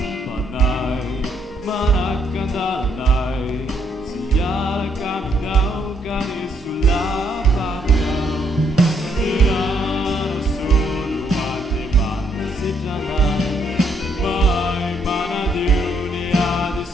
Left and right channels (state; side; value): normal; both; correlation 0.71